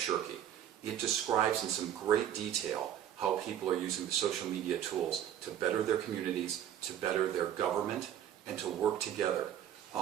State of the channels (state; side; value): quieter; left; 10.5 dB